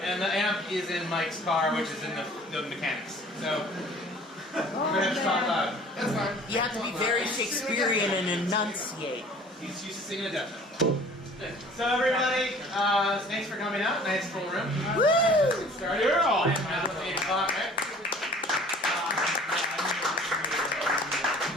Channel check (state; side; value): normal; both; correlation 0.49